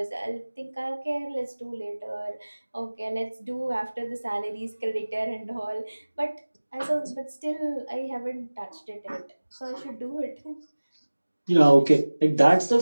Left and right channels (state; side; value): inverted; both; correlation -1.00